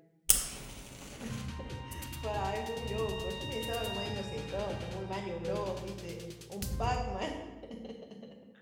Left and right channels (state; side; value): identical; both; correlation 1.00